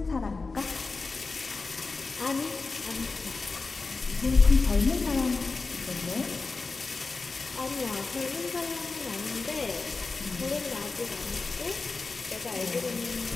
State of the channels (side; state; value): right; quieter; 3.9 dB